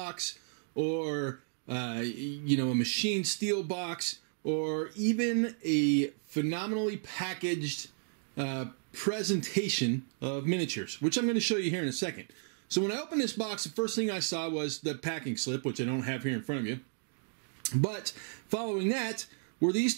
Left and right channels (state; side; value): silent; left; digital silence